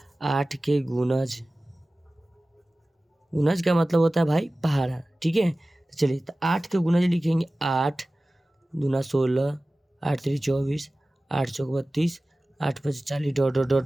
8 के गुणज, गुणज का मतलब होता है भाई पहाड़ा, ठीक है। तो चलिए तो 8 के गुणज लिखेंगे 8 दूना 16, 8 3 24, 8 चौक 32, 8 5 40 डॉट डॉट डॉट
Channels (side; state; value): both; normal; correlation 0.97